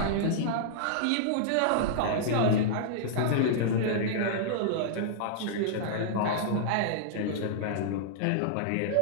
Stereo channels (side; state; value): both; different; correlation -0.02